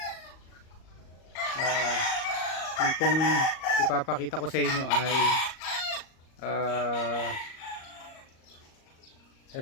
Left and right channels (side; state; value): right; late; 38 ms